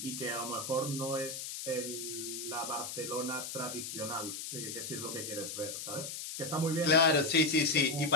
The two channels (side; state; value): left; noise; hiss, 6 dB below the sound